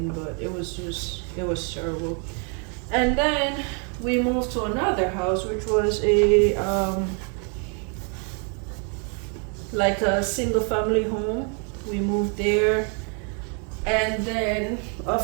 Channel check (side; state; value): left; quieter; 38.3 dB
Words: but it was terrible. And then we moved to another house, which was like a single family home. We moved there, and then,